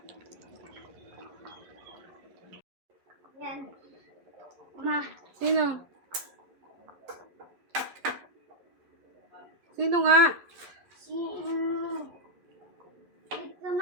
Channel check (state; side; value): late; left; 11 ms